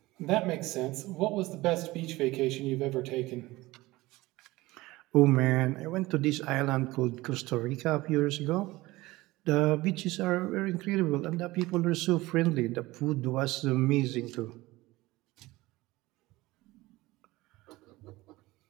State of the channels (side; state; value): left; quieter; 19.5 dB